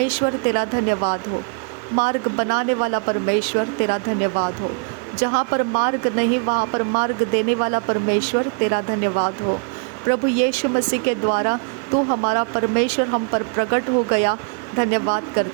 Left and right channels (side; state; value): left; quieter; 39.9 dB